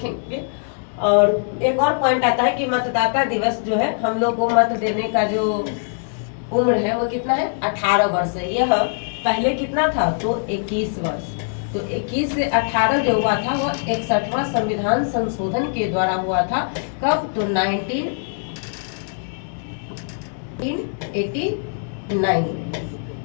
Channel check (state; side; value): silent; right; digital silence